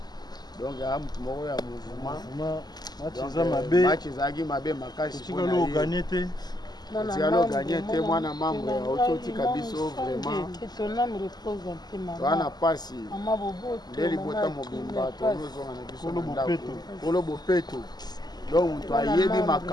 donc ya mutu moko ya mouvement match ezalaki mabe makasi tikalo gagné te mwana membre ya ototika biso vraiment wana pasi nde libota mobimba tozozonga na biso kolo bopeto donc moto ayebi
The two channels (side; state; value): right; late; 0.20 ms